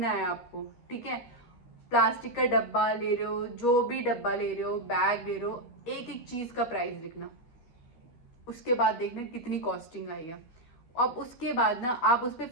है आपको, ठीक है। प्लास्टिक का डब्बा ले रहे हो, जो भी डब्बा ले रहे हो, बैग ले रहे हो, एक एक चीज का प्राइस लिखना, उसके बाद देखना कितनी कॉस्टिंग आई है। अब उसके बाद ना आप उस पर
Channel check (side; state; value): right; late; 13 ms